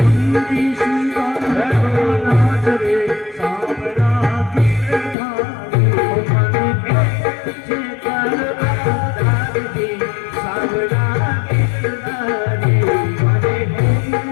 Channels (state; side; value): drops out; right; at 5.2 s